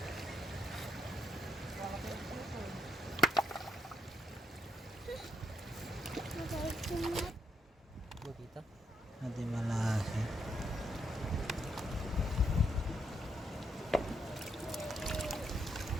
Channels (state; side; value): normal; both; correlation 0.76